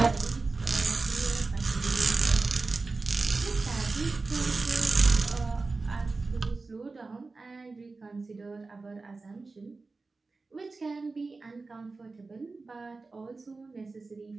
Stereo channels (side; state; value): left; quieter; 3.8 dB